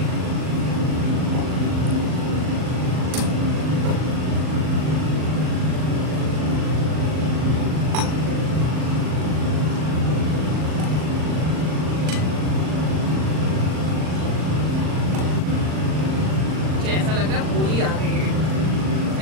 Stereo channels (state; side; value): late; left; 39 ms